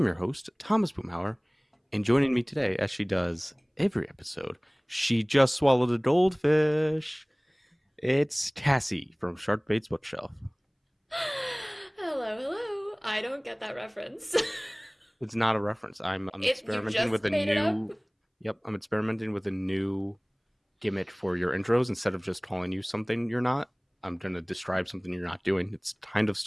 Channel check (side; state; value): both; identical; correlation 1.00